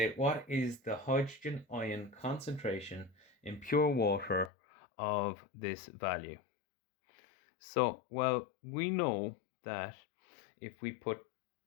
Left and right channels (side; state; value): right; drops out; at 4.5 s